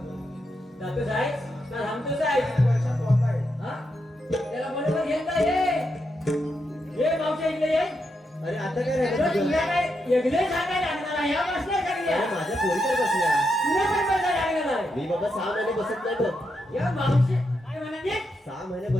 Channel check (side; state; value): both; normal; correlation 0.83